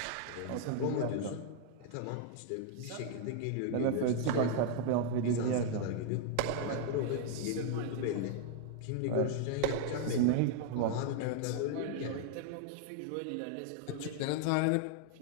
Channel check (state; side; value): different; both; correlation 0.00